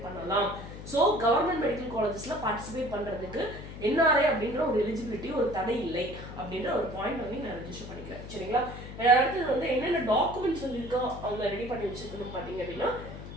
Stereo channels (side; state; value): left; noise; hum, 11 dB below the sound